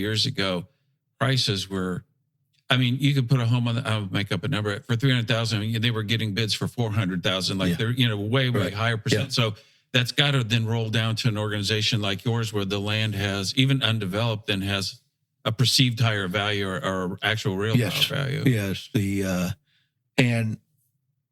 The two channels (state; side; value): identical; both; correlation 1.00